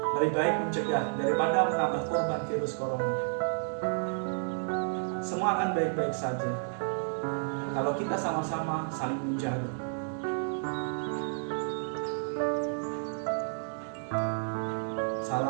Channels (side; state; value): left; silent; digital silence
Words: Lebih baik mencegah daripada menambah korban virus corona. Semua akan baik-baik saja kalau kita sama-sama saling menjaga.